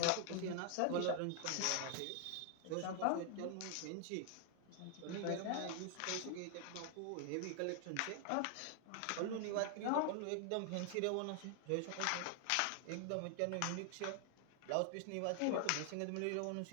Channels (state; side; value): different; both; correlation 0.00